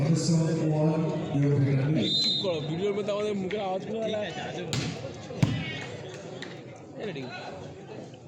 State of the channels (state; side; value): identical; both; correlation 1.00